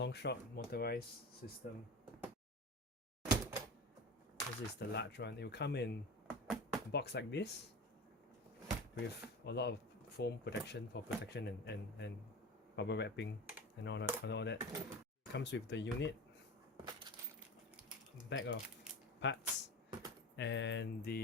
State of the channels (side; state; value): both; normal; correlation 0.31